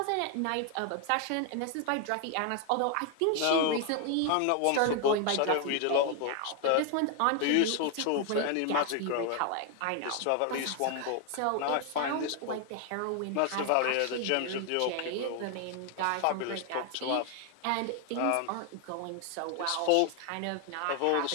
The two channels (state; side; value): different; both; correlation 0.01